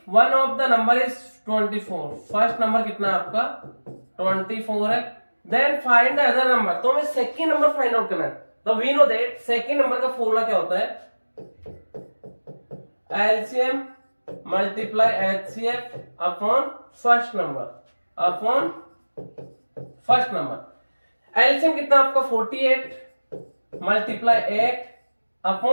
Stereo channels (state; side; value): inverted; both; correlation -1.00